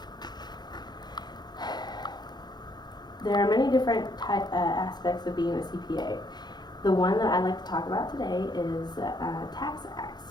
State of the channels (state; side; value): late; right; 0.21 ms